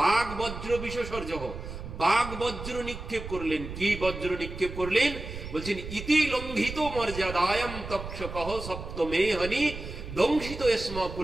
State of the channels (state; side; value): noise; right; rumble, 9 dB below the sound